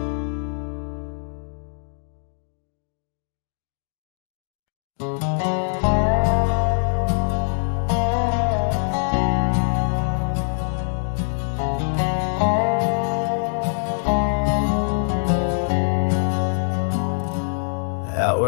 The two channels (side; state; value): right; silent; digital silence